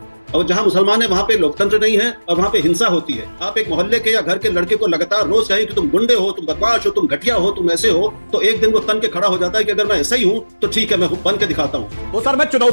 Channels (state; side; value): inverted; both; correlation -1.00